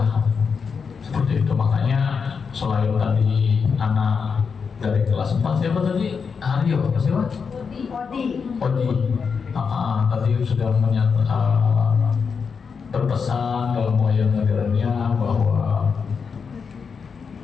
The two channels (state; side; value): quieter; right; 5.8 dB